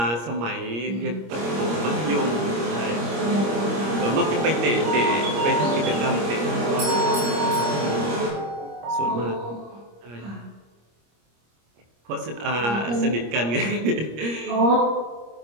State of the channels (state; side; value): late; left; 25 ms